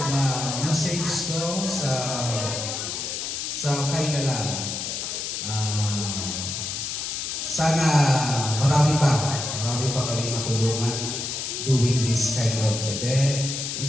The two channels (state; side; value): noise; left; hiss, 4 dB below the sound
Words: message ko sa final lang. Sana marami pa kami matulungan doing this kind of event.